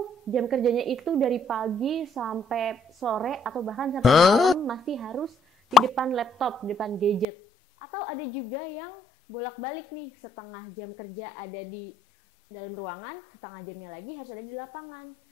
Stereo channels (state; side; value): drops out; right; at 7.2 s